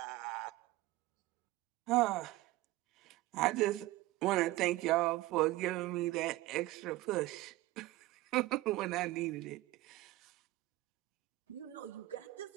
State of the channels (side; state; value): left; quieter; 17.9 dB